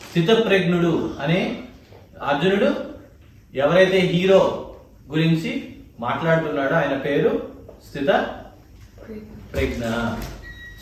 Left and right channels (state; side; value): identical; both; correlation 1.00